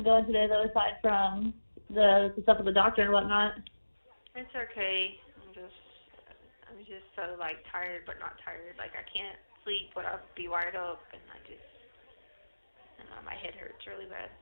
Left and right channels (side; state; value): both; inverted; correlation -1.00